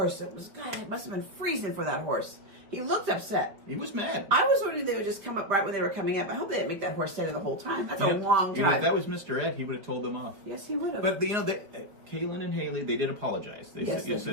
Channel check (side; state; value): left; late; 4.7 ms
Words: It must have been freezing for that horse. He looked upset. He was mad. I was wondering if they would just come up right when they were coming up. I hope they didn't make that horse stay there the whole time. That's a long time. If that was Mr. Ed, he would have told them off. Yes, he would have. But Kaylin and Haley, they did apologize. They said,